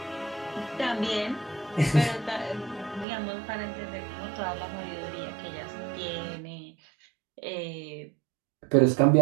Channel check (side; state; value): left; drops out; at 3.1 s